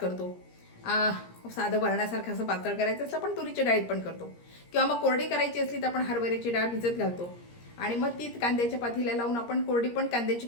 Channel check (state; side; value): late; right; 17 ms